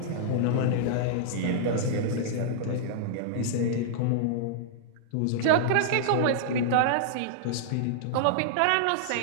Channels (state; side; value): different; both; correlation -0.02